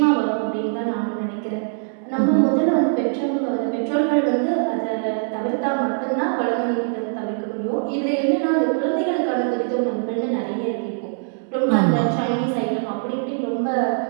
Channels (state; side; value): silent; left; 64 dB below the other